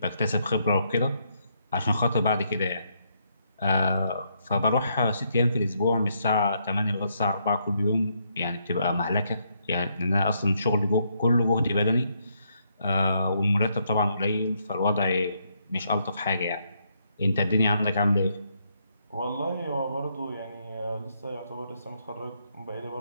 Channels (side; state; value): both; inverted; correlation -0.75